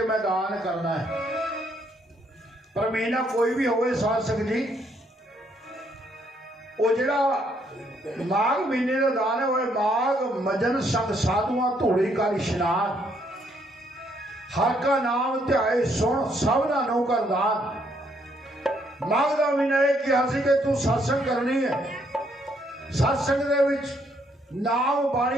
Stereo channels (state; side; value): normal; both; correlation 0.71